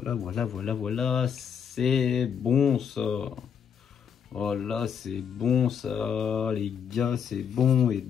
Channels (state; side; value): quieter; right; 7.6 dB